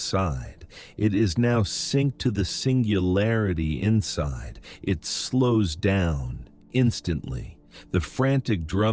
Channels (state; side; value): identical; both; correlation 1.00